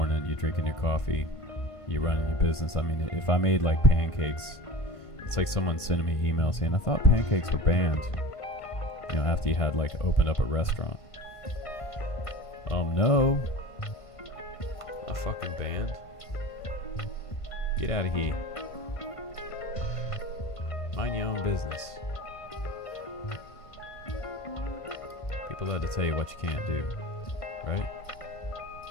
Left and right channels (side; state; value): right; late; 1.5 ms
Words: You're drinking your coffee, you're running your business. I mean, if I made like pancakes, it's like someone sending me an email saying, I thought pancakes were banned. You know, after you had like opened up a restaurant. No. A fucking band. Get out of here. Mind your own business. People love to tell you what you can't do, right?